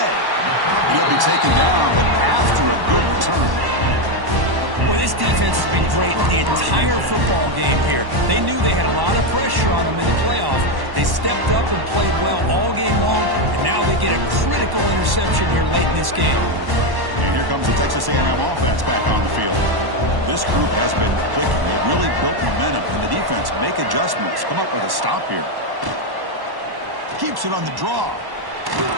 He'll be taken down, but after a good return. Well, this defense has been great the entire football game here. They knew they had a lot of pressure on them in the playoff. They stepped up and played well all game long, and now they get a critical interception here late in this game. And here comes the Texas A&M offense back on the field. This group has been clicking. They've really built momentum, and the defense make adjustments. Come up with a stop here. Keeps it on the draw.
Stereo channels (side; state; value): left; late; 1.1 ms